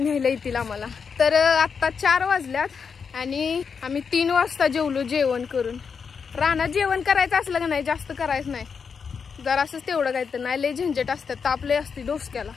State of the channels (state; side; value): quieter; right; 6.0 dB